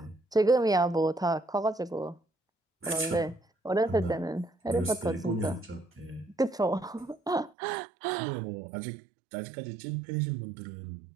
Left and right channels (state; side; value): drops out; left; at 7.5 s